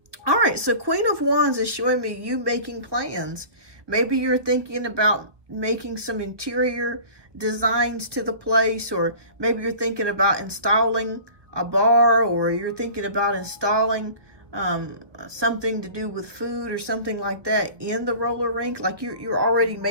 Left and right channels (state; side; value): late; left; 1.3 ms